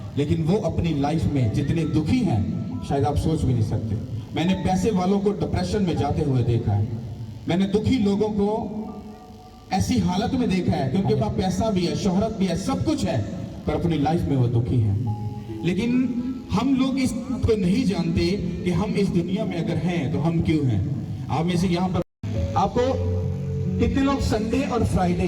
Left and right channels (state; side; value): identical; both; correlation 1.00